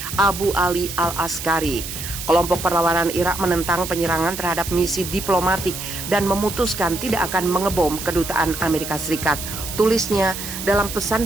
Abu Ali al-Askari. Kelompok perlawanan Irak menentang penyerangan terhadap misi diplomatik dan memutuskan tidak akan mengebom kedutaan Amerika Serikat. Tulisnya dalam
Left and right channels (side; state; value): right; noise; hiss, 8 dB below the sound